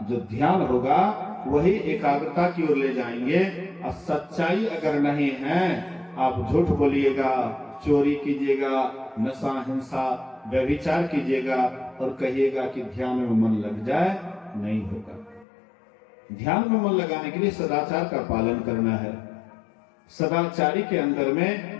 जो ध्यान होगा वही एकाग्रता की ओर ले जाएंगे। और सच्चाई अगर नहीं है, आप झूठ बोलिएगा, चोरी कीजिएगा, नशा हिंसा व्यभिचार कीजिएगा और कहिएगा कि ध्यान में मन लग जाए, नहीं होगा। ध्यान में मन लगाने के लिए सदाचार का पालन करना है। सदाचारी के अंदर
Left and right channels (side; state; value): right; drops out; at 15.5 s